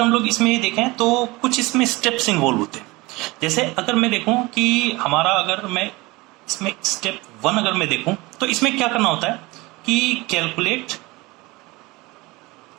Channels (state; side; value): quieter; left; 22.5 dB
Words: लोग इसमें देखें तो कुछ इसमें स्टेप्स इन्वॉल्व होते हैं। जैसे अगर मैं देखूं कि हमारा अगर मैं इसमें स्टेप 1 अगर मैं देखूं तो इसमें क्या करना होता है कि calculate